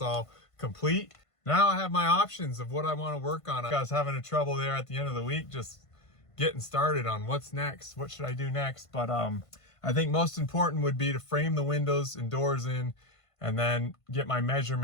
all complete. Now I have my options of what I want to work on. I was having a trouble there at the end of the week just getting started on what's next. What should I do next? But I think most important would be to frame the windows and doors in and then get my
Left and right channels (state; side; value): late; right; 1.5 ms